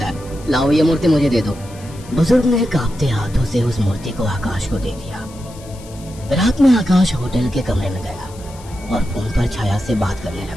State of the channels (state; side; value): noise; left; hiss, 21 dB below the sound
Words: है। लाओ, ये मूर्ति मुझे दे दो। बुजुर्ग ने कांपते हाथों से उस मूर्ति को आकाश को दे दिया। रात में आकाश होटल के कमरे में गया और फोन पर छाया से बात करने